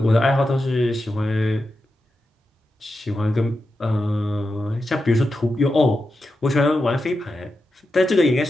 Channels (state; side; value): normal; both; correlation 0.89